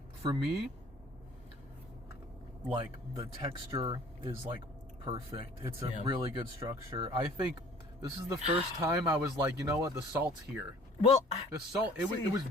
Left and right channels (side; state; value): both; normal; correlation 0.51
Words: For me, like the texture is like perfect. It's a Yeah. really good structure. I think this is the first time I was like, you know what, the salt's here. Well, The salt, it See- was